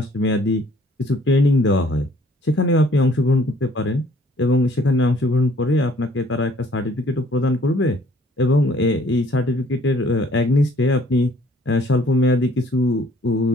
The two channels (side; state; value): both; normal; correlation 0.59